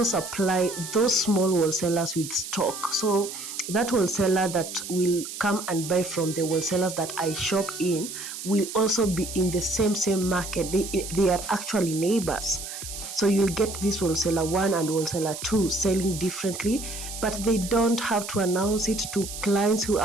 supply those small wholesalers with stock. So that wholesaler that will come and buy from the wholesalers that I shop in will also be in the same market. They are actually neighbors. So you'll get this wholesaler 1 and wholesaler 2 selling differently, but they don't have to announce it to clients who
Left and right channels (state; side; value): noise; right; hiss, 9 dB below the sound